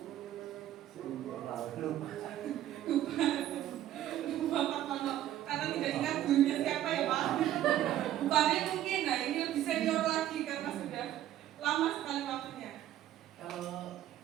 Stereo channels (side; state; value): left; quieter; 12.5 dB